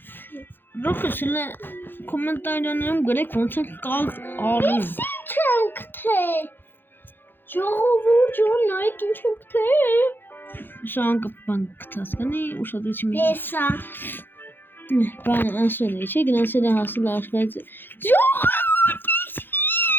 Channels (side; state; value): right; late; 0.099 ms